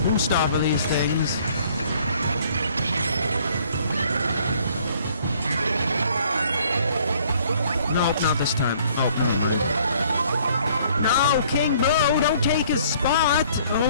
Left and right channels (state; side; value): inverted; both; correlation -0.60